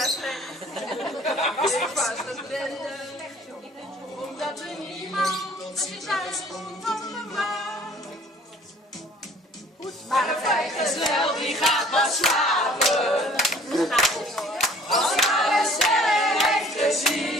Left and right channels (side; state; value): both; normal; correlation 0.53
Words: is ik was het bende. Omdat er niemand zich thuis komt van de maat. Maar een vrijgezel die gaat pas slapen. Als hij een sterren heeft